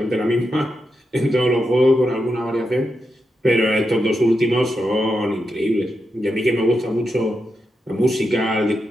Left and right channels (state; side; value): normal; both; correlation 0.86